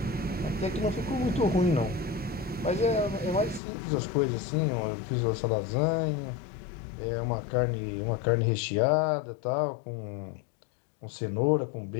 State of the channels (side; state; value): right; drops out; at 3.6 s